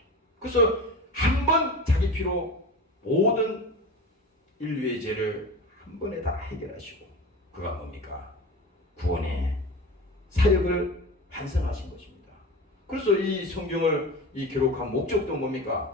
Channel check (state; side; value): normal; both; correlation 0.31